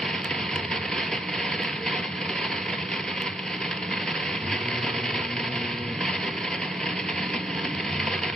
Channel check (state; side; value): normal; both; correlation 0.75